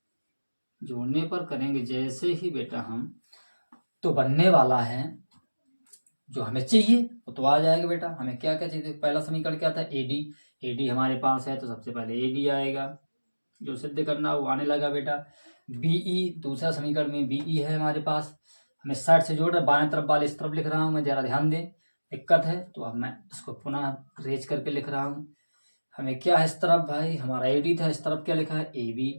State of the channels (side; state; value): both; inverted; correlation -1.00